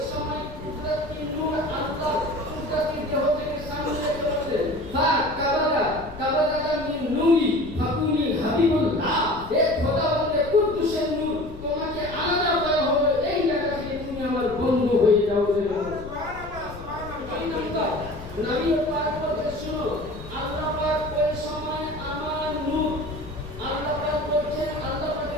সময় কুদরতি নূর আল্লাহ কুদরতি দেহ থেকে সামনে চললেন কাবাদাকা মিন নূরি ফাকুনি হাবিবুল্লাহ এ খোদাবন্দে কুদ্দুসের নূর তোমাকে আলাদা করা হবে এই জায়গা থেকে তুমি আমার বন্ধু হয়ে যাও সুবহানাল্লাহ নবী পাক বলতে শুনো আল্লাহ পাক ওই সময় আমার নূর আল্লাহ পাক বলছেন আল্লাহ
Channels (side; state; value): left; noise; rumble, 14 dB below the sound